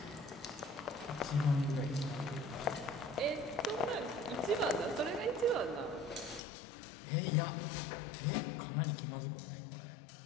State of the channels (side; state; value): right; drops out; at 6.4 s